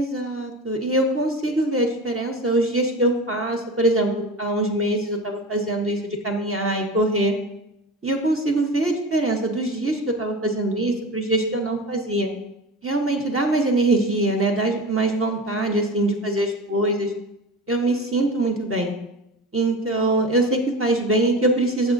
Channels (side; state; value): both; normal; correlation 0.31